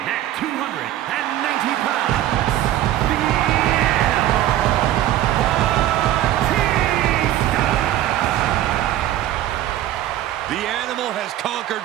at 290 pounds, the Animal, Batista! The Animal has conquered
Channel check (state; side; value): quieter; left; 13.2 dB